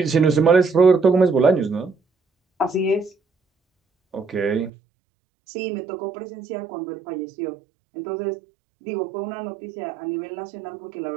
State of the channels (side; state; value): left; drops out; at 4.7 s